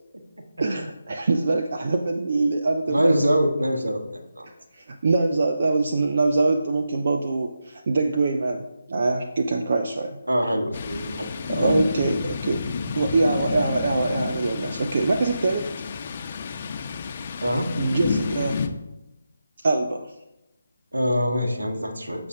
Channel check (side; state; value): both; inverted; correlation -0.88